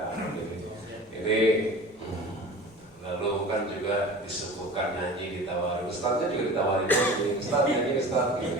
ini lalu kan juga disuguhkan nyanyi, ditawari, ustadznya juga ditawari, ustadz nyanyi, ustadz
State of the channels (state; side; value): normal; both; correlation 0.38